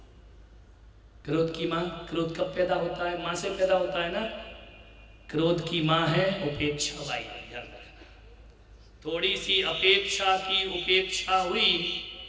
क्रोध की मां। क्रोध कब पैदा होता है? मां से पैदा होता है ना। क्रोध की मां है उपेक्षा बाई, ध्यान रखना। थोड़ी सी अपेक्षा की उपेक्षा हुई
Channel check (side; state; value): both; identical; correlation 1.00